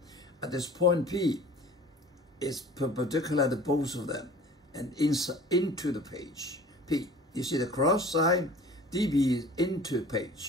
At this point P is perpendicular to both of them and into the page. P, you see the cross sign, dB is into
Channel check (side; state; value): both; normal; correlation 0.45